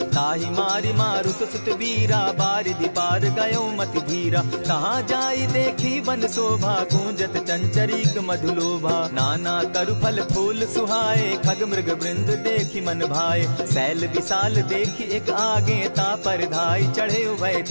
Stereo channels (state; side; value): inverted; both; correlation -1.00